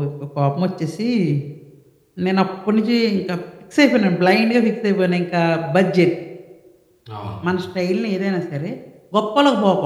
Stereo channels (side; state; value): both; identical; correlation 1.00